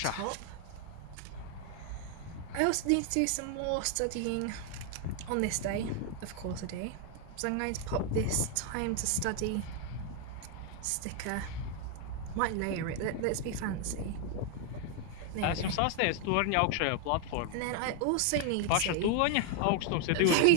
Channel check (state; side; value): different; both; correlation 0.01